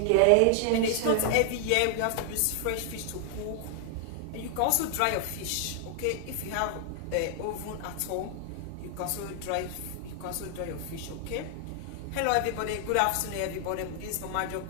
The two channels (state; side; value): different; both; correlation 0.00